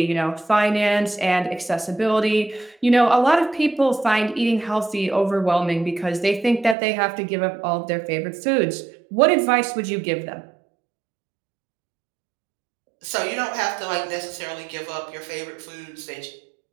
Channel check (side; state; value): left; drops out; at 6.8 s